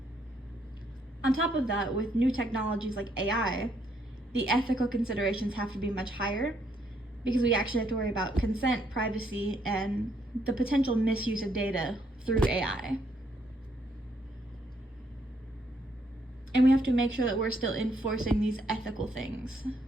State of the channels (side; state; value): both; normal; correlation 0.72